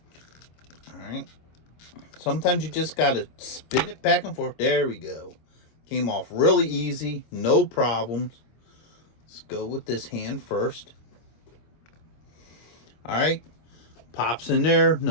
All right. Sometimes you just got to spin it back and forth. There we go. Came off really easy, no problems. Let's go with this hand first. All right. Pops in there,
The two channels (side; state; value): right; late; 25 ms